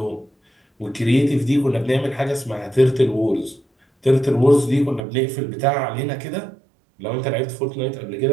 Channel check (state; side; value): drops out; left; at 5.0 s